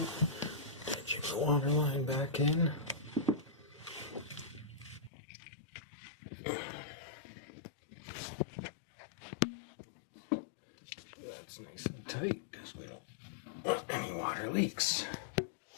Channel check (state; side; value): drops out; right; at 5.1 s